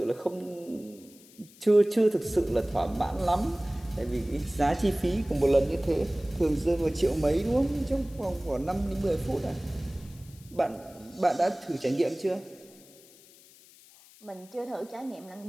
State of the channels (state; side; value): noise; left; hiss, 24 dB below the sound